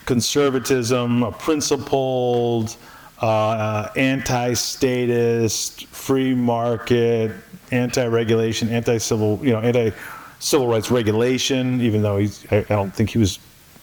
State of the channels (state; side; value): identical; both; correlation 1.00